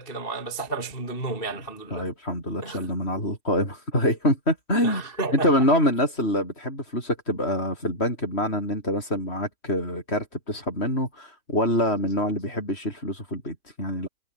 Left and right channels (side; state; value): right; late; 3.1 ms